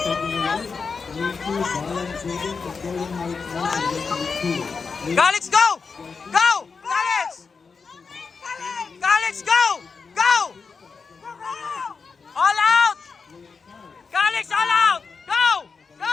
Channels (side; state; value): right; quieter; 5.1 dB